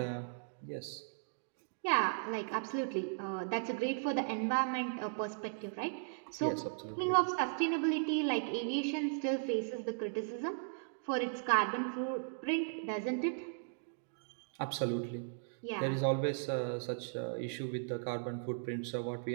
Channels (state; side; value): silent; left; digital silence